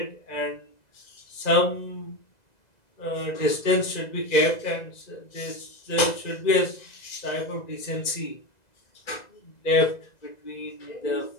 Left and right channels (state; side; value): late; right; 2.0 ms